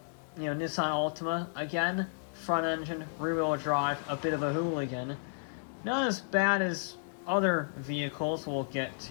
Nissan Altima, again, front engine, rear wheel drive, a bit of a hooligan. Not as bad as other vehicles we'll get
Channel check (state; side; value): silent; right; digital silence